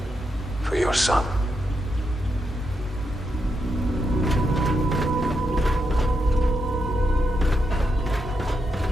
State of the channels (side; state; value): both; normal; correlation 0.83